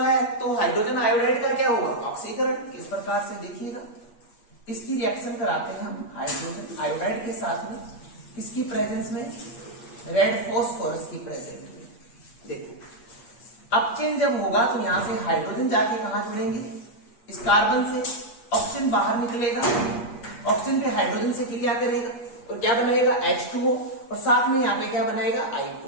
है तो हाइड्रोजन आयोडाइड का क्या होगा, ऑक्सीकरण। किस प्रकार से देखिएगा, इसकी रिएक्शन कराते हैं हम हाइड्रोजन आयोडाइड के साथ में, किसकी प्रेजेंस में, रेड फॉस्फोरस की प्रेजेंस में। देखो अपचयन जब होगा तो यहां से हाइड्रोजन जाके कहां जुड़ेंगे, इस कार्बन से, ऑक्सीजन बाहर निकलेगा, ऑक्सीजन पे हाइड्रोजन से क्रिया करेगा तो क्या बनाएगा, H2O और साथ में यहाँ पे क्या बनाएगा,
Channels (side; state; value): right; late; 8.4 ms